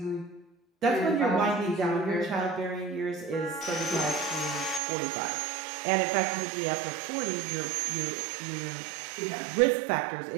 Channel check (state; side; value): drops out; left; at 4.8 s